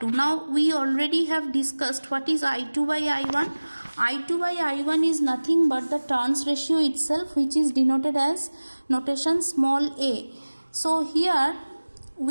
Now we already have discussed what is I2 by I1. I2 by I1 is nothing but the turns ratio itself, which is denoted as notation small a. So here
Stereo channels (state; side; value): inverted; both; correlation -1.00